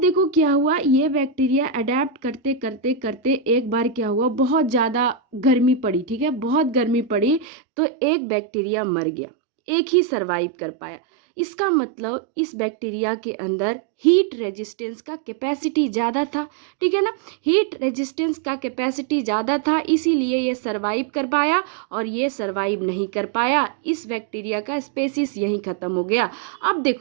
देखो क्या हुआ, ये बैक्टीरिया अडेप्ट करते करते करते एक बार क्या हुआ, बहुत ज़्यादा गर्मी पड़ी, ठीक है, बहुत गर्मी पड़ी, तो एक बैक्टीरिया मर गया, एक ही सरवाइव कर पाया। इसका मतलब इस बैक्टीरिया के अंदर हीट रेजिस्टेंस का कैपेसिटी ज़्यादा था, ठीक है ना। हीट रेजिस्टेंस का कैपेसिटी ज़्यादा था, इसीलिए ये सरवाइव कर पाया, और ये सरवाइव नहीं कर पाया, इस बैक्टीरिया का स्पेसिस यहीं ख़त्म हो गया। अब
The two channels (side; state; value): left; drops out; at 7.5 s